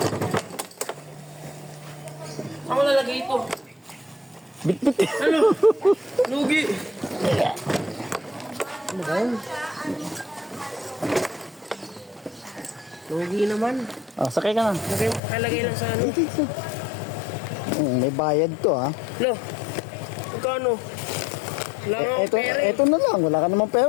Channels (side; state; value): right; drops out; at 15.2 s